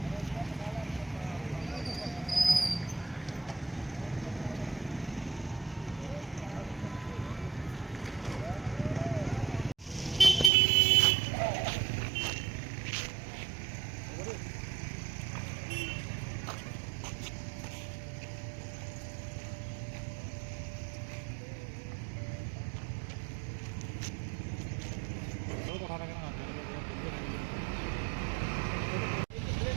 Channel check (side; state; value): left; drops out; at 10.5 s